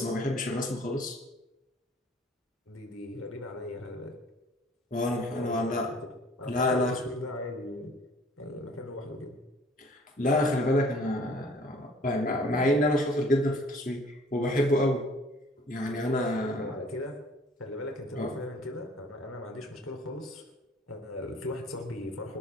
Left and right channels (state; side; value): normal; both; correlation 0.54